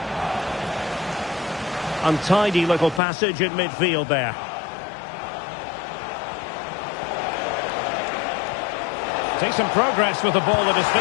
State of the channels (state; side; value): drops out; right; at 3.0 s